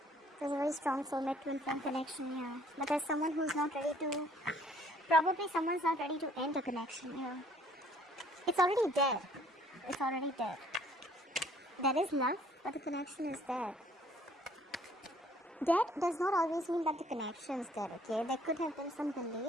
There's a very strong soulmate twin flame connection here. But there's someone who's not ready to... Probably someone's not ready to end a connection here. It's already dead. It's already dead. There is love, but the connection is dead. Dead does not always mean that the connection is dead, okay? There could have been some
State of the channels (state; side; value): normal; both; correlation 0.60